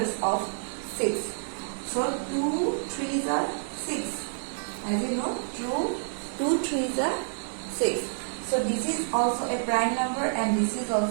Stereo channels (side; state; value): left; silent; 59 dB below the other